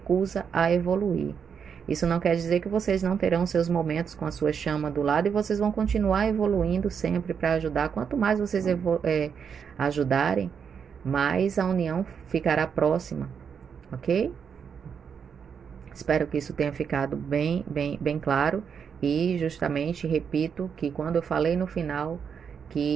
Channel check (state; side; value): quieter; left; 7.0 dB